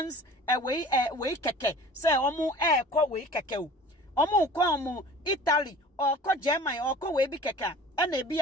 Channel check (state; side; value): normal; both; correlation 0.44